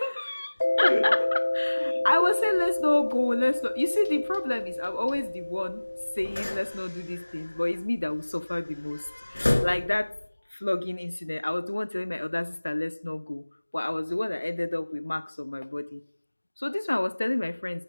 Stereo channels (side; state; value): both; inverted; correlation -1.00